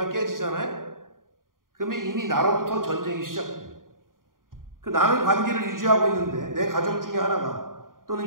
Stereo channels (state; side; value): late; left; 0.90 ms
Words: 깨지잖아요? 그러면 이미 나로부터 전쟁이 시작돼요. 나는 관계를 유지하고 있는데 내 가족 중에 하나가, 또는